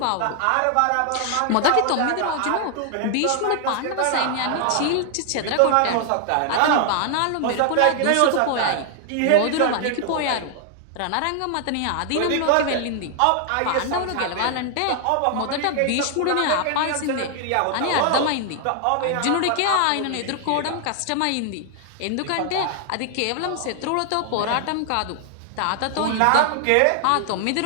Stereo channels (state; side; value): different; both; correlation 0.00